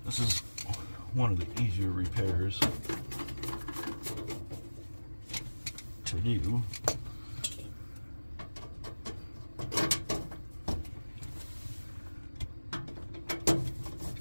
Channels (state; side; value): inverted; both; correlation -1.00